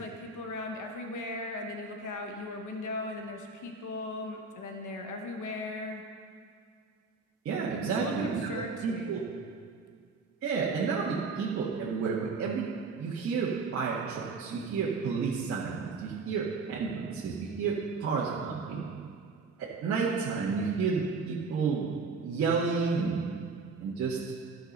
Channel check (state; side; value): quieter; left; 4.2 dB